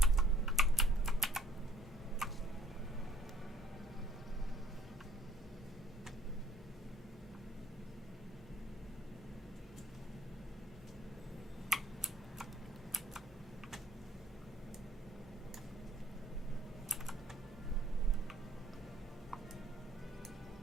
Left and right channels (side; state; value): both; normal; correlation 0.58